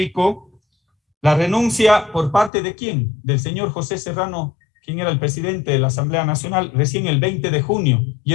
la renuncia por parte de ¿quién? Del señor José Serrano, quien era el presidente de la Asamblea Nacional, recién el 20 de junio, y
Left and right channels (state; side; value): drops out; right; at 2.5 s